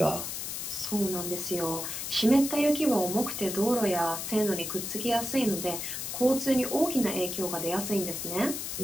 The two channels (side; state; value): left; noise; hiss, 5 dB below the sound